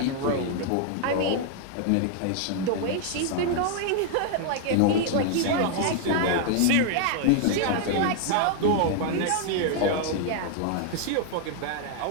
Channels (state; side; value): different; both; correlation 0.00